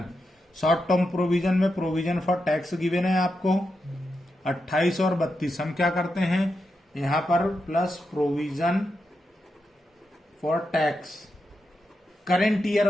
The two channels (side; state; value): both; normal; correlation 0.86